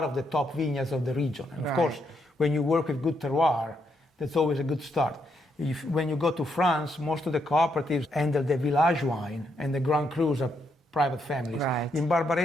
of the top vineyards of the region. And of course, when you work with good terroir, that's always a good start. When you go to France, most of the cooperatives handle the village wine, and the Grand Crus are private families. In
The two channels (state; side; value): normal; both; correlation 0.78